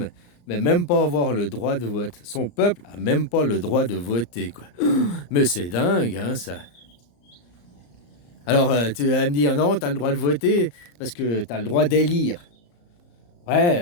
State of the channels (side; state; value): right; late; 34 ms